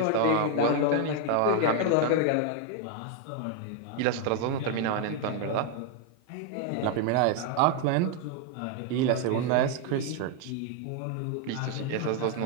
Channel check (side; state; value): both; different; correlation 0.00